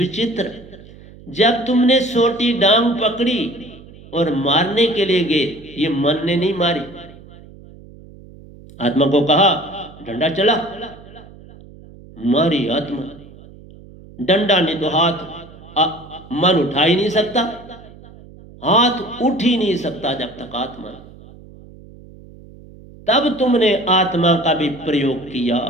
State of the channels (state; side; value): noise; right; hum, 20 dB below the sound